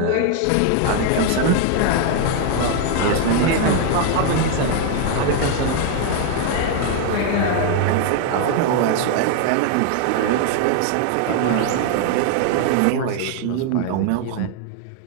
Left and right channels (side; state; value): both; different; correlation 0.00